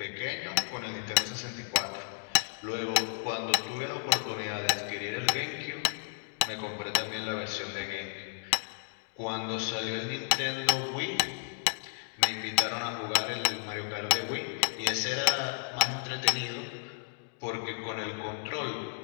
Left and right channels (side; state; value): right; silent; digital silence